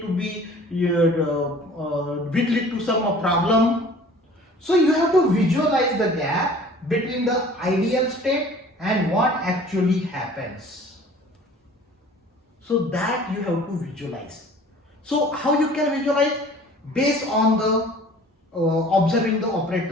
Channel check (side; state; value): both; normal; correlation 0.48